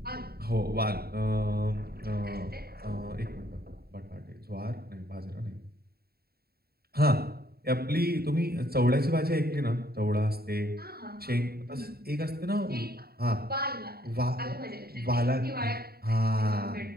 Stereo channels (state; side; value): late; left; 0.45 ms